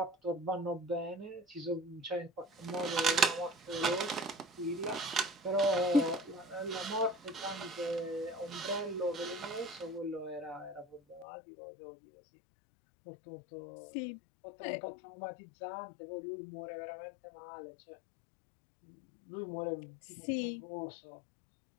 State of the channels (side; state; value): right; drops out; at 11.2 s